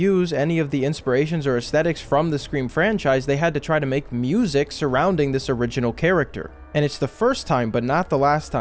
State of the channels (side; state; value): both; identical; correlation 1.00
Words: any of the inspirations or aesthetics from the Scream franchise, they had to try to make music surrounding this original character. And it's the first time, but not the last